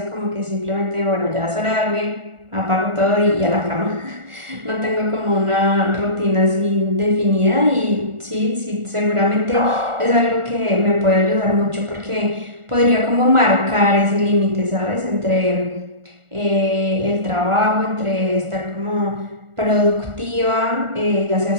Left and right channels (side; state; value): left; late; 1.4 ms